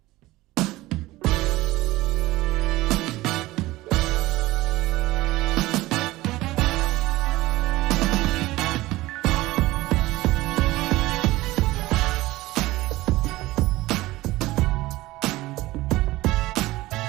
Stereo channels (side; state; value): left; quieter; 18.5 dB